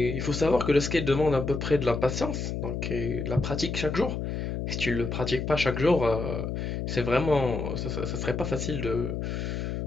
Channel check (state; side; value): noise; left; hum, 3 dB below the sound